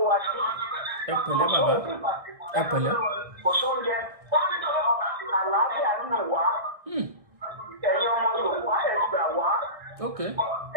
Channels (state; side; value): late; left; 1.6 ms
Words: wa sí. ẹ pẹ̀lẹ́ bàbá ẹ pẹ̀lẹ́. kò sóúnjẹ àlàáfíà ń nù wá. ẹ̀yin ọmọ Yorùbá ẹ gbà wá.